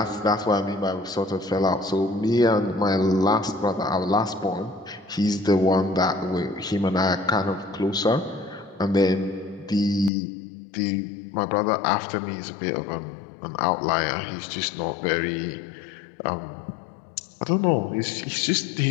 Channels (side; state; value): right; drops out; at 10.1 s